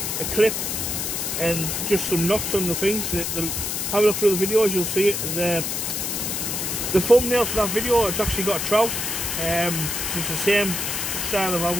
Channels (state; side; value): noise; left; hiss, 2 dB below the sound